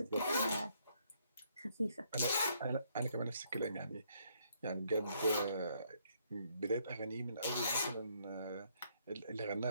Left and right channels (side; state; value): both; inverted; correlation -0.71